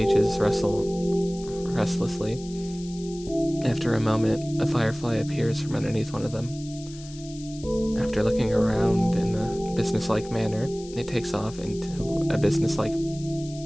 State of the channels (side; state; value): left; noise; hiss, 18 dB below the sound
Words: rustle restlessly. After a moment, a firefly appears from underneath one of them. After looking around in a businesslike manner, it takes off into a businesslike